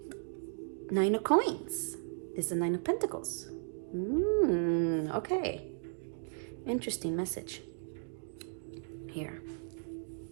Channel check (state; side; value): silent; left; digital silence